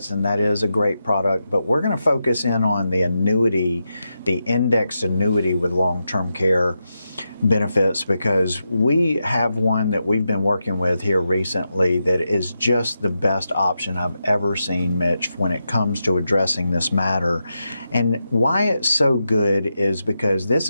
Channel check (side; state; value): both; inverted; correlation -0.87